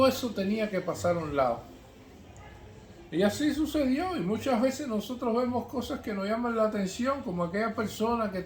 eso tenía que pasar a un lado. Y así sucedió, y muchas veces nosotros vemos cosas que nos llaman la atención, como aquella persona que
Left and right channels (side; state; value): both; identical; correlation 1.00